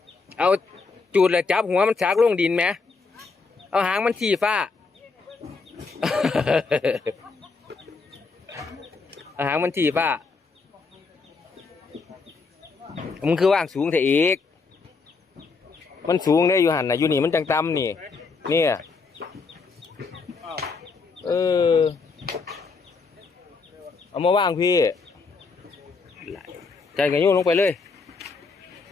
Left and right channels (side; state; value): right; quieter; 4.4 dB